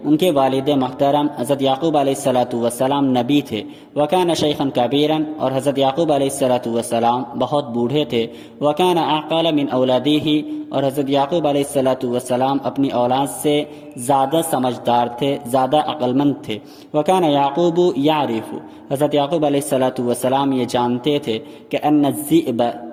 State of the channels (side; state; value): both; identical; correlation 1.00